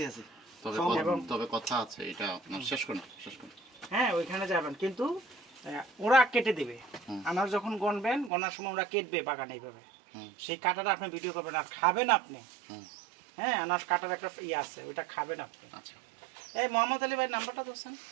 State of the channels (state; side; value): drops out; left; at 8.3 s